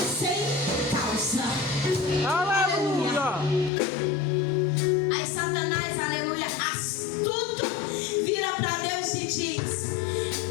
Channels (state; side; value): drops out; right; at 3.7 s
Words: sem causa. Aleluia. Aí Satanás, aleluia, astuto, vira para Deus e diz: